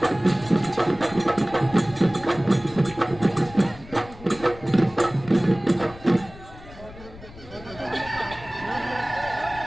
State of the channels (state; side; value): noise; left; rumble, 18 dB below the sound